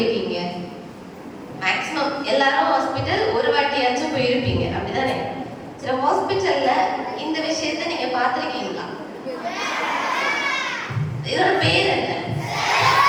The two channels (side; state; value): both; identical; correlation 1.00